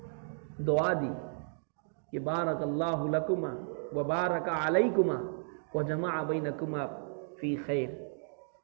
دعا دی کہ بارک اللہ لکما وبارک علیکما وجمع بینکما فی خیر،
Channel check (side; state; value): left; silent; digital silence